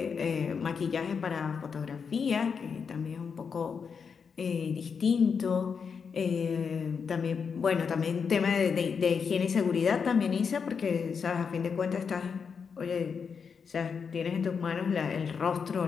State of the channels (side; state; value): right; quieter; 6.1 dB